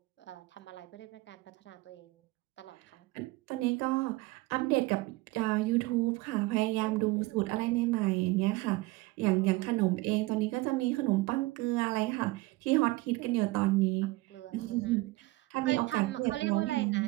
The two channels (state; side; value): quieter; left; 20.8 dB